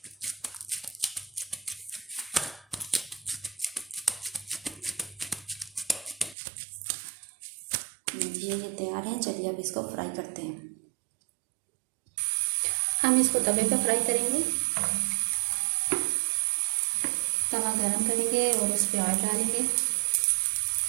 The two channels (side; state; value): left; drops out; at 6.4 s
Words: ये तैयार है। चलिए अब इसको फ्राई करते हैं। हम इसको तवे पर फ्राई करेंगे। तवा गरम करेंगे और उस पर ऑयल डालेंगे।